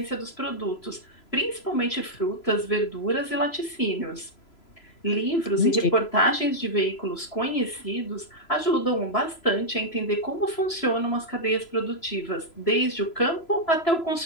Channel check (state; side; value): late; right; 3.0 ms